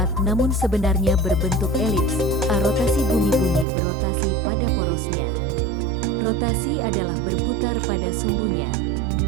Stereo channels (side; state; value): left; drops out; at 3.7 s